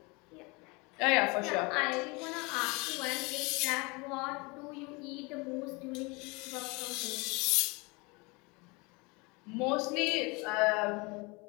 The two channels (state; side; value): quieter; right; 27.2 dB